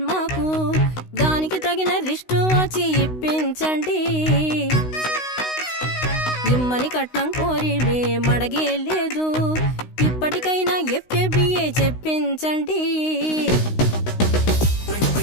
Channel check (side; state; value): right; late; 16 ms